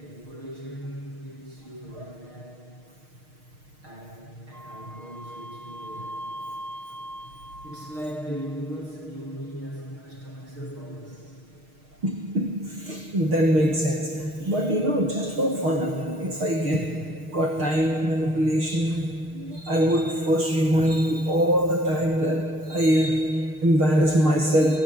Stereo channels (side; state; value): left; late; 6.5 ms